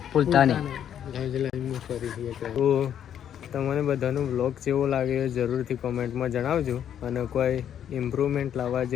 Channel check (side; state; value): right; quieter; 9.6 dB